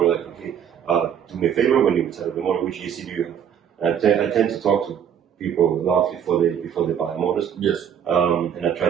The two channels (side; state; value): left; quieter; 8.7 dB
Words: like, okay, do me a favor when you set up the motor, which ESC do you have? And I tend to talk to people a lot before they buy motors. Yes. And I try